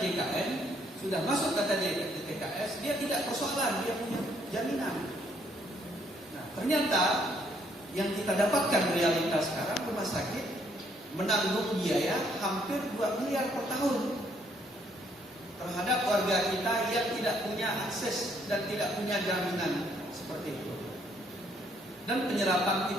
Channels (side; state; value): both; normal; correlation 0.68